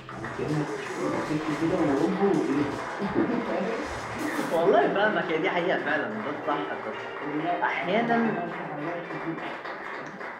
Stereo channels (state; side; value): identical; both; correlation 1.00